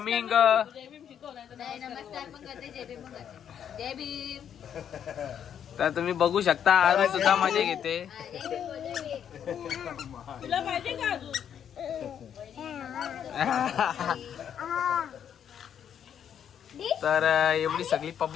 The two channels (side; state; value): right; quieter; 8.9 dB